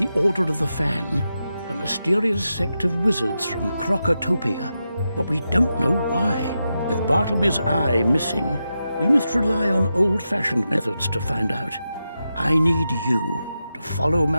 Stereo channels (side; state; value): both; inverted; correlation -0.89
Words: Order of the Fang, a mysterious sect of wizards from Crocotopia, but we don't know why. With Bartleby's eye missing, we must rely on old-fashioned methods to find out. I need you to follow